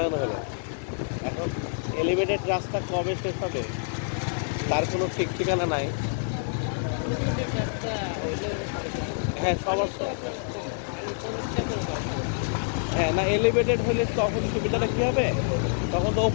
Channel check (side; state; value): right; silent; digital silence